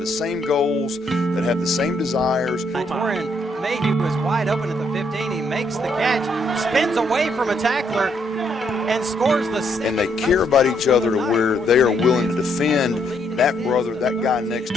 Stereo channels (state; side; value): normal; both; correlation 0.73